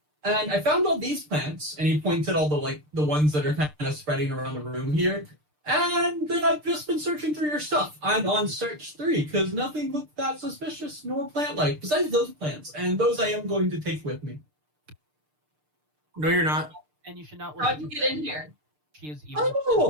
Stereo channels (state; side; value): late; left; 6.7 ms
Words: And I found all these plants, and he points at all the ones that are kind of spreading around the room here. And then I've just been searching through your stuff. I'm on search 3 because nothing looked that suspicious nor plant-like besides those plants, and those I am going to take with me. No, you're not. And you should not. How'd you get in here? She is evil.